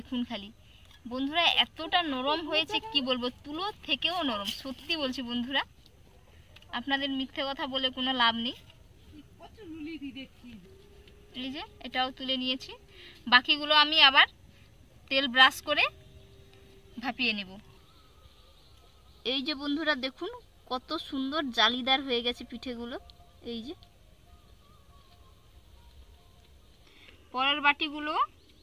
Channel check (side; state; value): both; identical; correlation 1.00